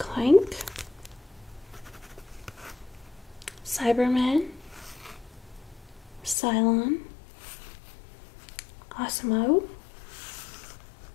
Cyberman, Cylon, Osmo,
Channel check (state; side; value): drops out; right; at 6.4 s